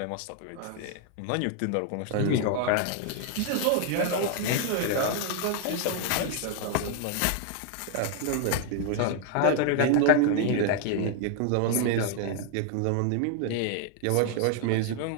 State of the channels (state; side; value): different; both; correlation 0.00